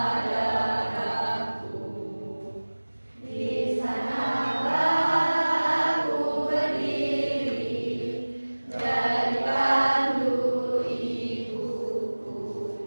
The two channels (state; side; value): inverted; both; correlation -1.00